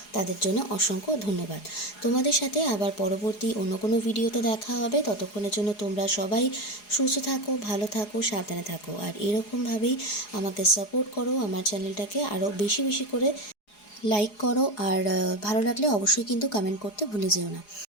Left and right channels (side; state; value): right; late; 4.8 ms